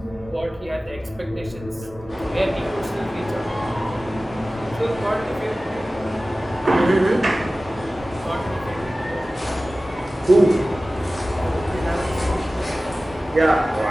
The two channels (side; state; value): both; normal; correlation 0.97